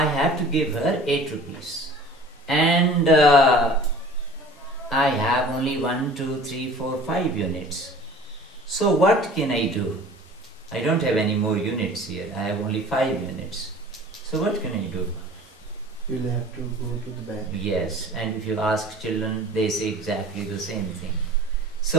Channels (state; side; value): normal; both; correlation 0.45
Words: have to give her 8 rupees. And I have only 1, 2, 3, 4, 5 units. So what can I do? I don't have any more units here. I have only 5 units. So what can I do? You'll have to go to the bank. Yes, and if you ask children, they say exactly the same thing.